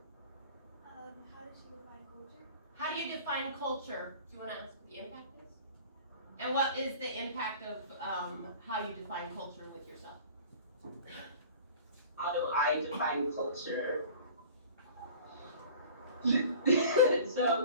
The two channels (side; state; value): both; inverted; correlation -0.44